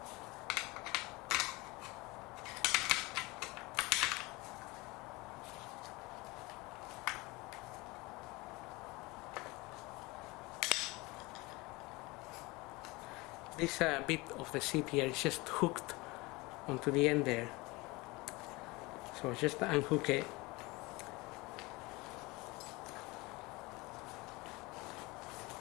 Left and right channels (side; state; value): right; quieter; 23.5 dB